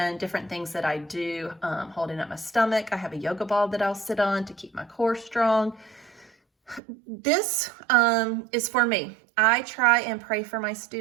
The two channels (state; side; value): drops out; left; at 6.8 s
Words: different things that I do, holding up my stomach. I have a yoga ball that I'll sit on to keep my core strong. This is for me. I try and pray for my